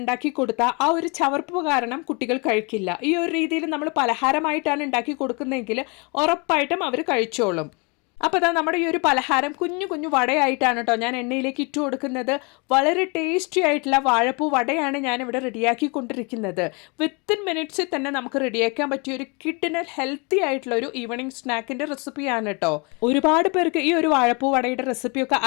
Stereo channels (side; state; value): right; quieter; 31.3 dB